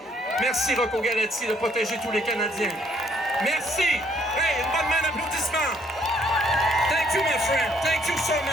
Merci, Rocco Galati, de protéger tous les Canadiens. Merci! Hey, une bonne main d'applaudissement! Thank you, my friend. Thank you so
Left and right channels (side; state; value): both; normal; correlation 0.66